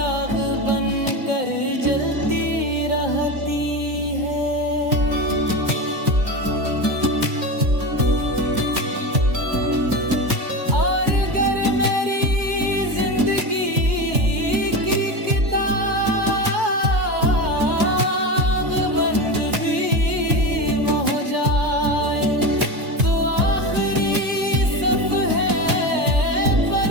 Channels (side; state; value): left; late; 2.2 ms